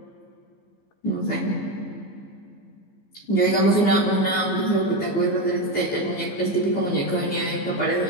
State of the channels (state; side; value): late; right; 15 ms